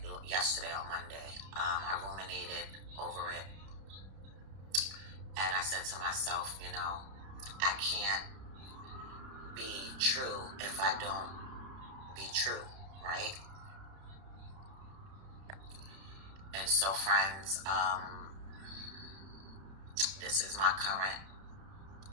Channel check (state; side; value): late; left; 31 ms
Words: yesterday on Monday. I ruminated over it. And I said to myself, I can't be true if I don't be true, right? And so, friends, this is my current,